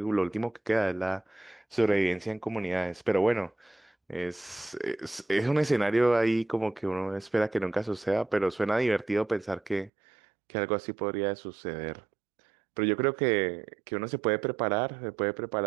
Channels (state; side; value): drops out; left; at 9.9 s